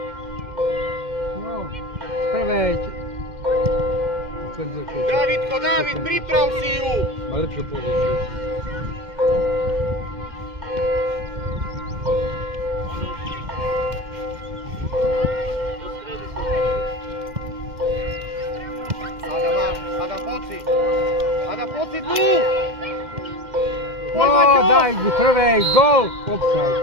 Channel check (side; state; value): left; late; 2.1 ms